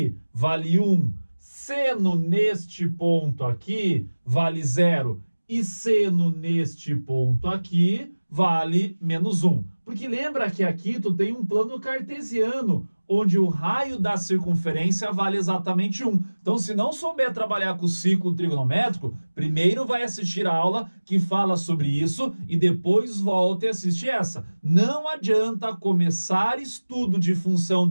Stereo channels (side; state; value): both; inverted; correlation -1.00